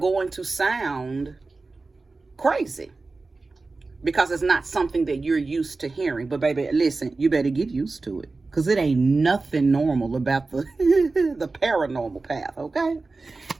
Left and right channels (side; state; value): left; quieter; 3.7 dB